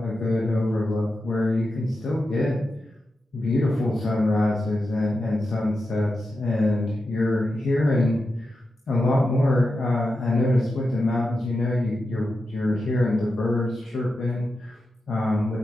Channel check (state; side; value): normal; both; correlation 0.89